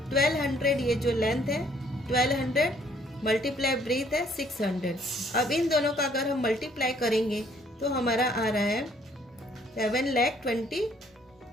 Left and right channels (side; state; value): both; normal; correlation 0.63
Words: ये जो लेंथ है 1200 मल्टीप्लाई ब्रेथ है 600। अब इन दोनों का अगर हम मल्टीप्लाई करेंगे तो हमारा आ रहा है